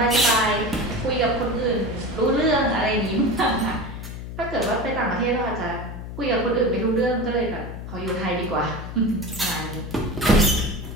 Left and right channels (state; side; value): noise; left; hum, 9 dB below the sound